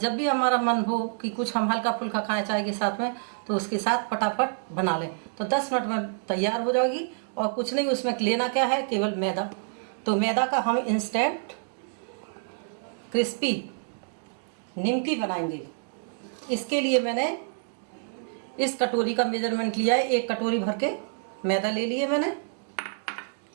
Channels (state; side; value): silent; left; digital silence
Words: भी हमारा मन हो कि कुछ हम हल्का फुल्का खाएं चाय के साथ में, तो उसके साथ फटाफट बना लें तो 10 मिनट में तैयार हो जाएगी। और कुछ नहीं, उसमें लेना क्या है, केवल मैदा। तो मैदा का हम इंस्टेंट क्रिस्पी निमकी बनाएंगे। इसके लिए मैंने इस कटोरी का मेजरमेंट लिया है। 1 कटोरी भर के मैदा ले लिए मैंने,